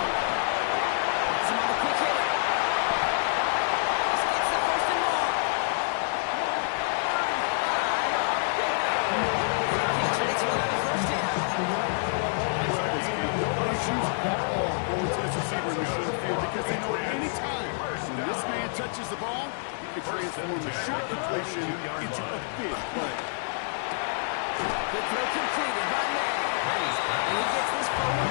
Gets him on the quick hitter. This gets the 1st and more. 35 on the pickup. The Patriots will have the 1st down. No issues at all going to this receiver in the short field because they know any time when this man touches the ball, he can transform a short completion into a big play. Good throw completed by May. And he gets this forward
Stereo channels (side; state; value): right; silent; digital silence